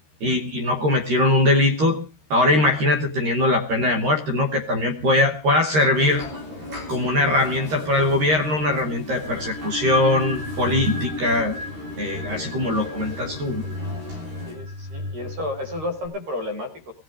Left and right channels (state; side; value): late; left; 13 ms